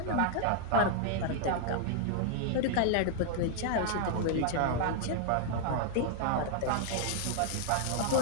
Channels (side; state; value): both; different; correlation 0.00